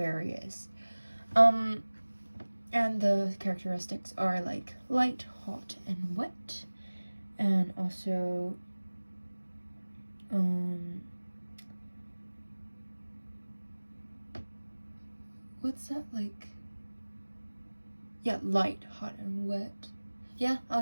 And the characteristics are light, hot, and wet, and also what's that yeah, light, hot, and wet. Yeah, I'll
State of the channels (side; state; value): both; inverted; correlation -1.00